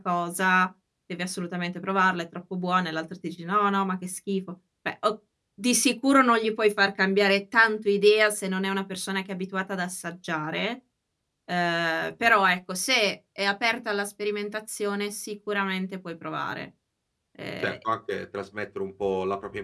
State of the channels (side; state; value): both; identical; correlation 1.00